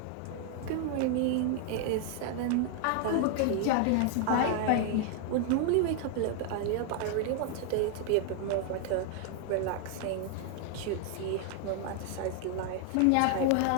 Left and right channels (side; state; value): both; different; correlation 0.00